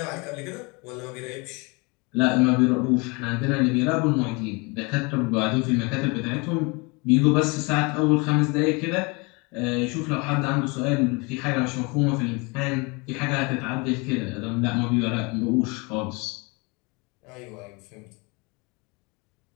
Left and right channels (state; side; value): quieter; right; 28.7 dB